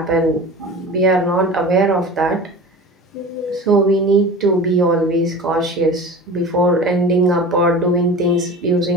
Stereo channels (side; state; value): both; normal; correlation 0.35